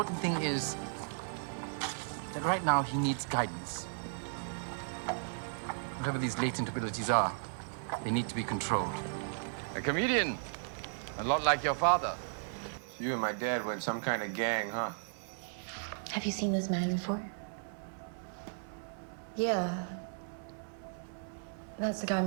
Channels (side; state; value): left; silent; 54 dB below the other